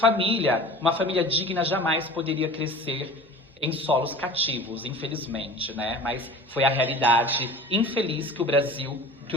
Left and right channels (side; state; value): both; normal; correlation 0.40